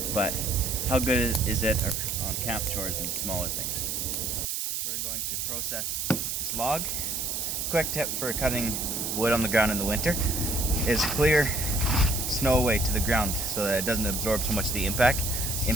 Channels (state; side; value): noise; right; hiss, 2 dB below the sound